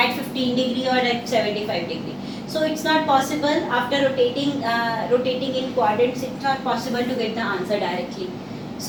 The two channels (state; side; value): identical; both; correlation 1.00